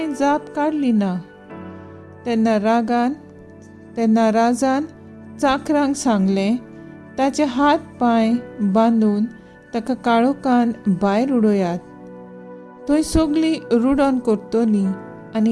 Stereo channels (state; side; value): identical; both; correlation 1.00